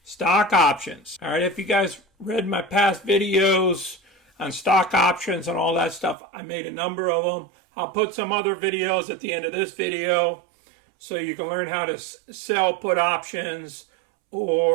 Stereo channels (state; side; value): drops out; left; at 6.2 s